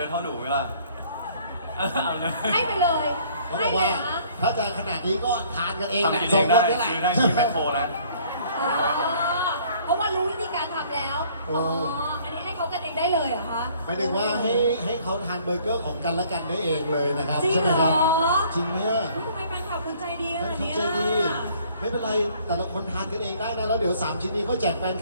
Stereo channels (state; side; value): inverted; both; correlation -0.58